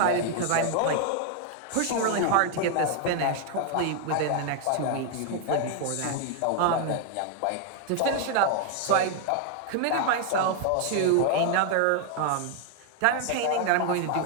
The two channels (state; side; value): different; both; correlation 0.00